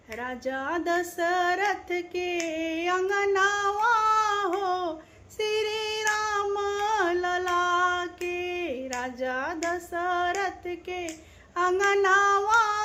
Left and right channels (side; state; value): both; identical; correlation 1.00